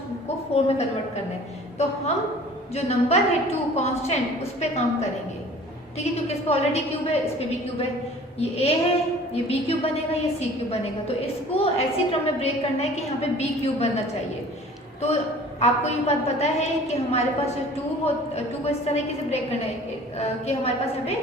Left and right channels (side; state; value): both; normal; correlation 0.47